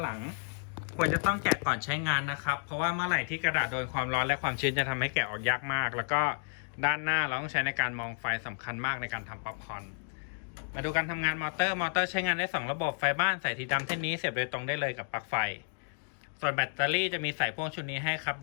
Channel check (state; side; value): silent; right; digital silence